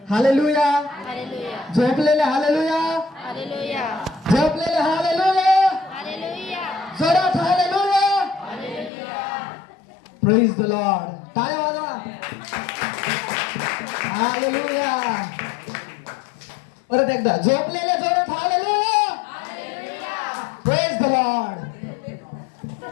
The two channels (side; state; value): right; drops out; at 8.9 s